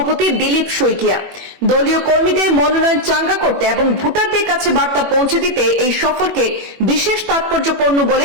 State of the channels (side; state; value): left; late; 21 ms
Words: দিলীপ শইকিয়া। দলীয় কর্মীদের মনোনয়ন চাঙ্গা করতে এবং ভোটারদের কাছে বার্তা পৌঁছে দিতে এই সফরকে বিশেষ তাৎপর্যপূর্ণ